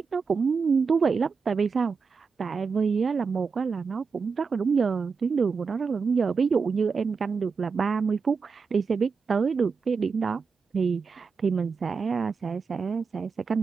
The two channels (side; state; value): left; quieter; 5.2 dB